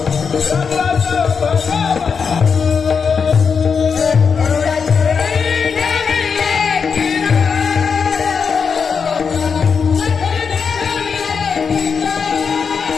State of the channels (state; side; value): quieter; right; 5.9 dB